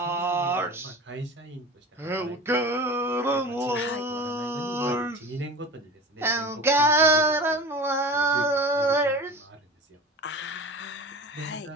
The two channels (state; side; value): normal; both; correlation 0.34